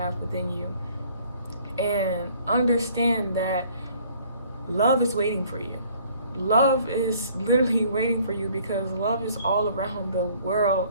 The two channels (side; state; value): both; inverted; correlation -0.58